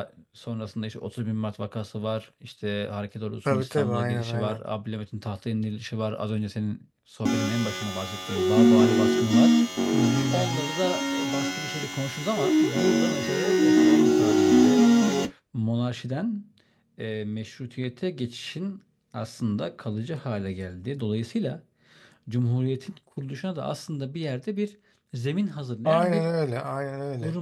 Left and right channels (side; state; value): both; identical; correlation 1.00